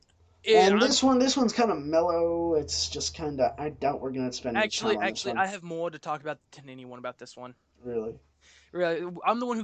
And I'm this one's kind of mellow. It's just kind of. I doubt we're gonna spend any time on this actually one. I have more to talk about than anyone about this one. Really. Really, I'm the one who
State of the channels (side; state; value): both; identical; correlation 1.00